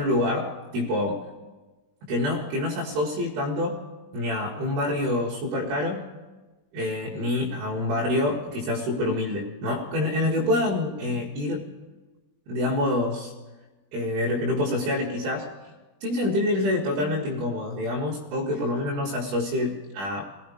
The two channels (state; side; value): late; left; 21 ms